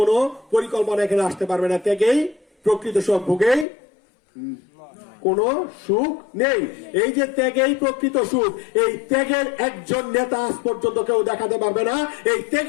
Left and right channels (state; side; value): drops out; right; at 3.7 s